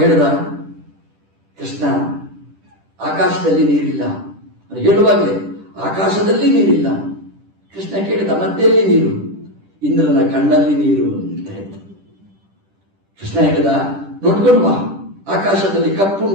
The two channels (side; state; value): left; late; 10 ms